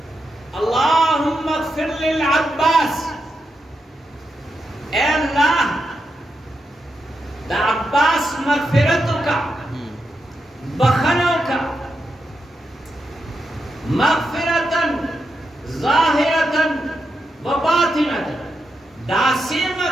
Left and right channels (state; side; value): normal; both; correlation 0.86